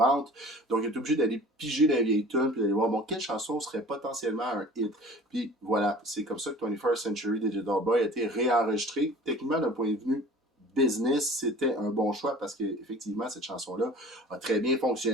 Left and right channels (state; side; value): normal; both; correlation 0.44